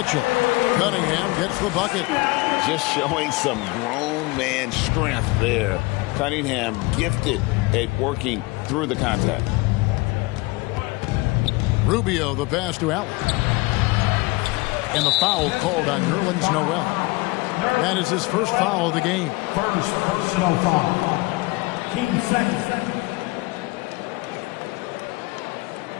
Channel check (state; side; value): quieter; right; 23.7 dB